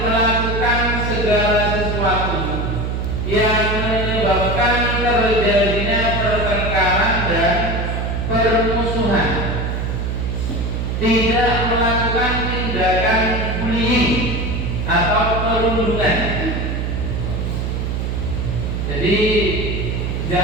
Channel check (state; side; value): noise; right; hum, 1 dB below the sound